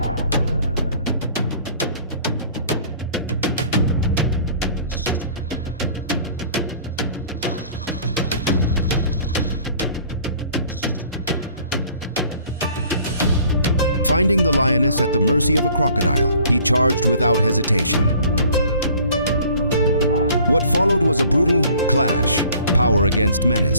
Finding the lioness at the mercy of a crocodile, he charged without hesitation. What followed was a brutal clash, power against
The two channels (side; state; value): both; inverted; correlation -0.53